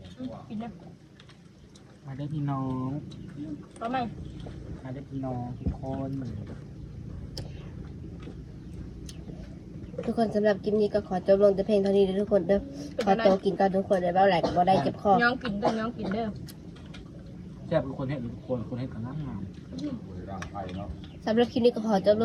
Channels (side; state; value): both; identical; correlation 1.00